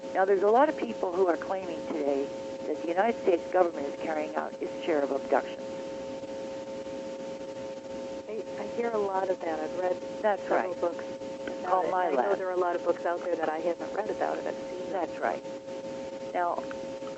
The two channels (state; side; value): identical; both; correlation 1.00